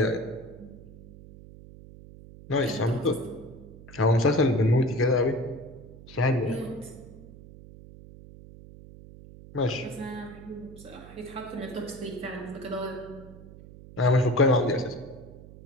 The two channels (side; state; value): right; noise; hum, 18 dB below the sound